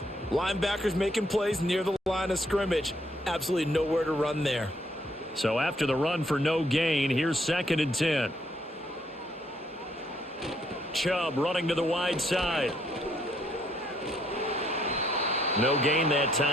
linebackers making plays near the line of scrimmage. Absolutely nowhere to run there. So after the run for no gain, here's 2nd and 10. Chubb running to the wide side. No gain that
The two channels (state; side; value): normal; both; correlation 0.70